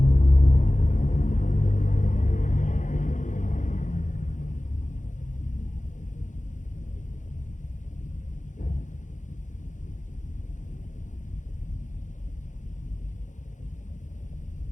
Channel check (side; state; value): right; late; 0.36 ms